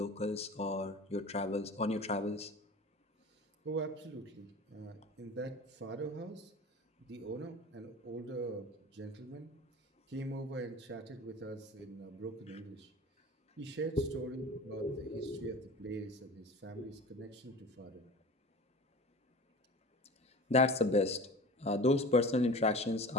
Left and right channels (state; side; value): normal; both; correlation 0.37